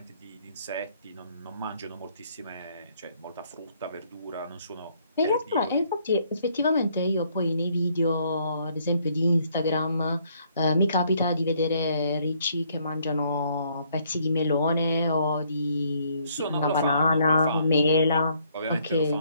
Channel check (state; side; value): inverted; both; correlation -0.67